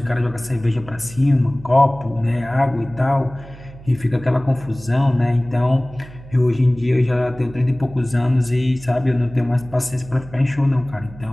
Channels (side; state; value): right; noise; hum, 18 dB below the sound